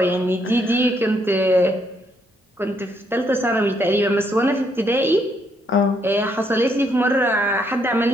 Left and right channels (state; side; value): normal; both; correlation 0.72